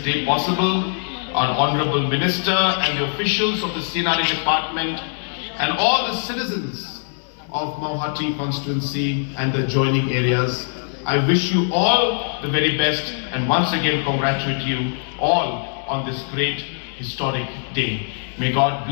possible. Our Honorable Minister and the officials of the C&RD Department and all the citizens of Mawhati constituency and the adjoining areas. I wish you all the very best and once again congratulate you all on this great historic day. May God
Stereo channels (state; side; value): silent; right; 60 dB below the other